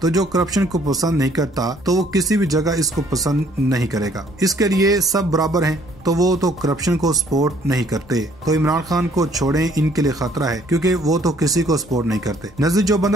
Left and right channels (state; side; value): normal; both; correlation 0.62